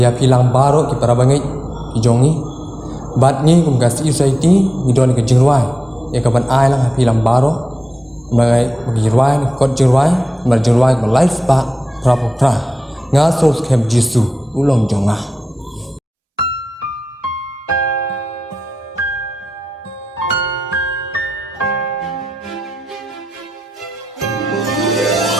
pilang baro ki para bangai ki jongi bat ni ga si society ni don ke jingwai ya ka ban ai lang pilang baro mai gi rwai kot jingwai mal jingwai ko life pa pra nga so skem jisu ulong jonga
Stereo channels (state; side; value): normal; both; correlation 0.92